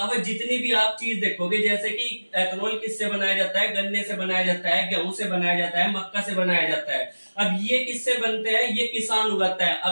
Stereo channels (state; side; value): inverted; both; correlation -1.00